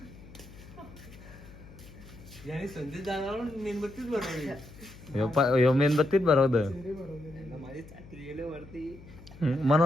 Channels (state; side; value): noise; left; hum, 19 dB below the sound